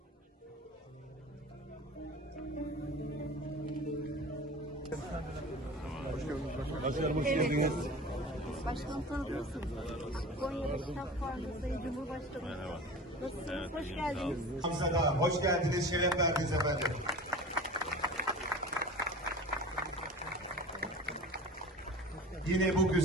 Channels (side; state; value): both; normal; correlation 0.36